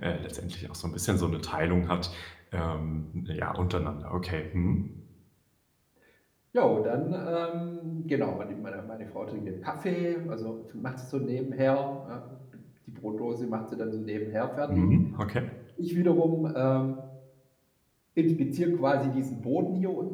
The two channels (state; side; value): identical; both; correlation 1.00